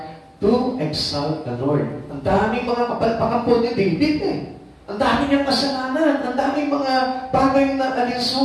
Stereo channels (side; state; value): both; identical; correlation 1.00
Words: to exalt the Lord. Ang daming mga kapalpakan po ni David eh. Ang dami niyang kasalanan, ang daming mga bagay na